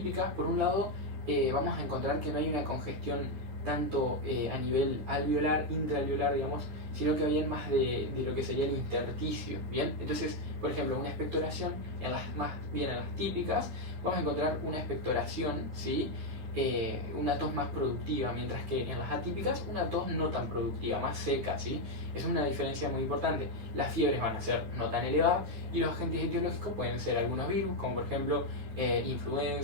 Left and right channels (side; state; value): left; late; 9.3 ms